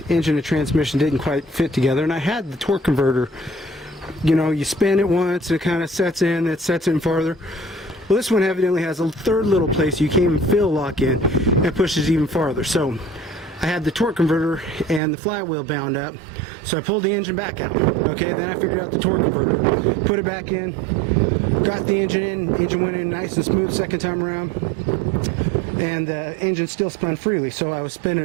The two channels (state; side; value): drops out; left; at 15.0 s